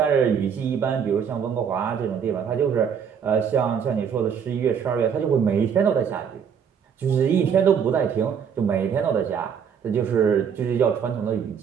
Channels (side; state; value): left; quieter; 7.4 dB